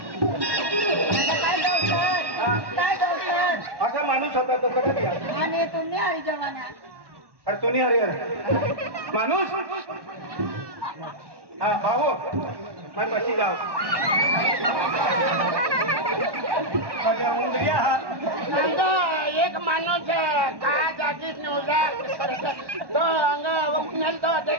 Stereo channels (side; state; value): left; late; 1.1 ms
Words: असा माणूस होता तो कसा दिला आणि तुम्ही हरी जवाना अरे तुम्ही अरे माणूस हा भाऊ मैं बसी जाओ उंदरिया हा एक माणूस का जागीच नव्हता तो अंग उन्हाळ तो